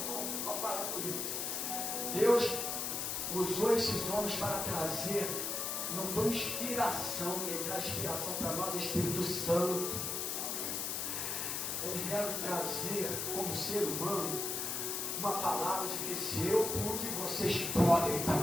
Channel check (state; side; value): noise; left; hiss, 1 dB below the sound